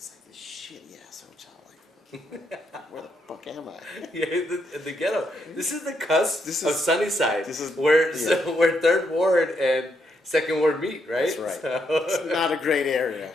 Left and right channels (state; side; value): normal; both; correlation 0.78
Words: like this shitty ass hotel. Like, where the fuck am I? Yeah, the ghetto. This is the cusp of Sunnyside. this is- where yeah. where Third Ward and Second Ward meet, right? That's right. So- It's not a great area.